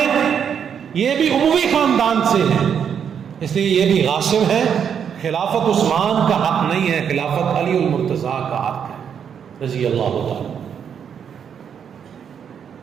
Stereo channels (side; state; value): left; quieter; 7.8 dB